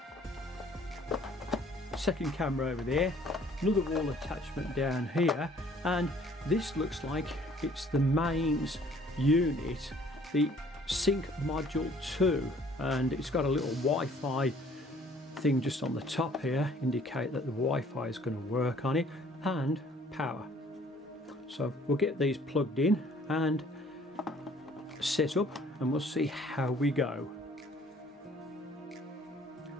Second camera over there, another wall attachment down here, and this looks like it's the mains unit, the Sync Module 2, and it's got a little Wi-Fi thing just on the top here, indicate that the Wi-Fi is going to work on it, and power. So we'll get these plugged in and set up, and we'll see how we go.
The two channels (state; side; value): normal; both; correlation 0.57